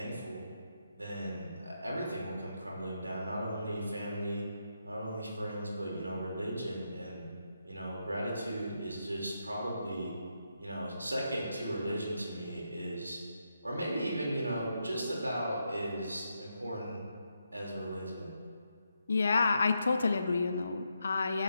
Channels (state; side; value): inverted; both; correlation -0.83